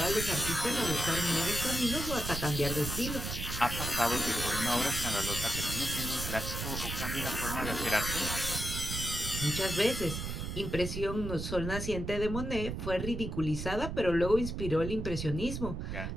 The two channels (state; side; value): noise; right; rumble, 5 dB below the sound